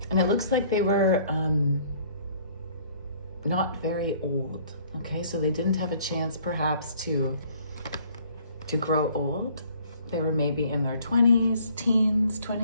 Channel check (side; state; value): both; inverted; correlation -0.58